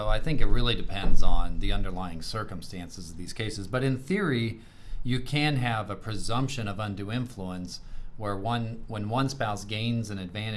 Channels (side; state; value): both; identical; correlation 1.00